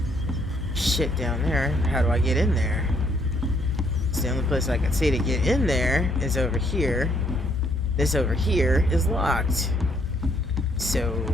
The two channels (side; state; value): both; normal; correlation 0.69